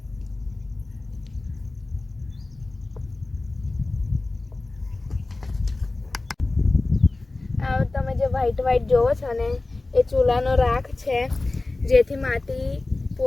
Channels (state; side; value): quieter; right; 3.1 dB